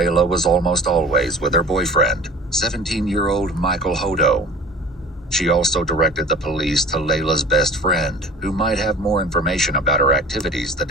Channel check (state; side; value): normal; both; correlation 0.42